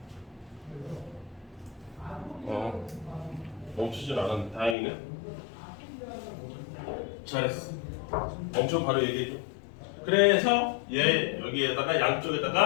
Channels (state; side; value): drops out; right; at 4.8 s